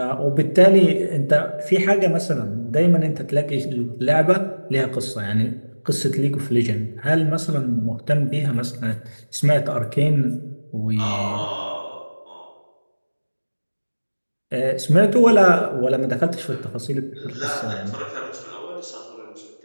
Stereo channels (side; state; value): both; inverted; correlation -1.00